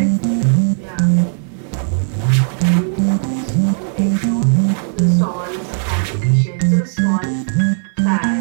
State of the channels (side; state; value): left; silent; digital silence